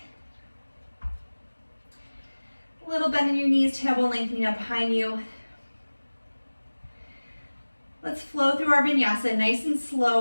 A little bend in your knees, tailbone lengthening up behind you. Let's flow through our vinyasa nice and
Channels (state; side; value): inverted; both; correlation -1.00